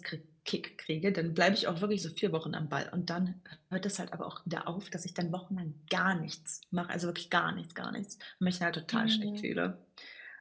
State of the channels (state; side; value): identical; both; correlation 1.00